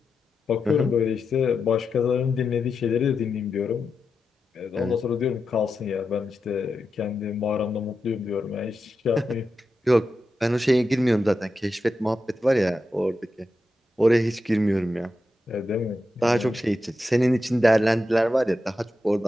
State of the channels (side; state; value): both; normal; correlation 0.89